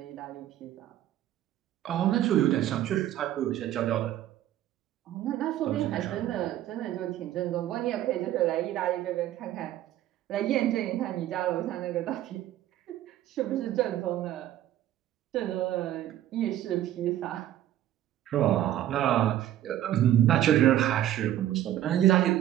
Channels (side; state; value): left; quieter; 12.6 dB